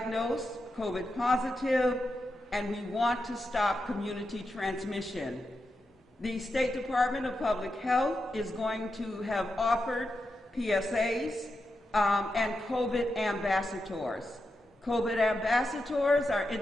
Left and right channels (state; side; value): normal; both; correlation 0.88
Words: COVID positive, and we want to stop community transmission. The State Department of Public Health is going to have offered PSAs and COVID ambassadors. COVID ambassadors are